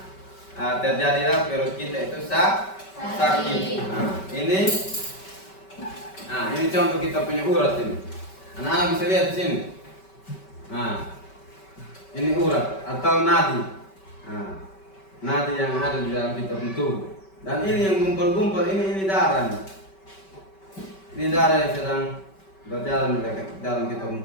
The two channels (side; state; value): right; late; 5.2 ms